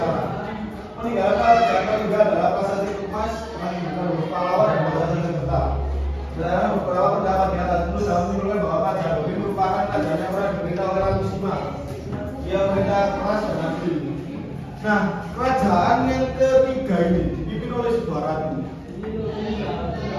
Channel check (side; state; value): both; identical; correlation 1.00